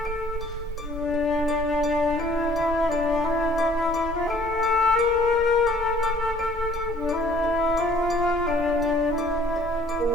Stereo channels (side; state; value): both; normal; correlation 0.57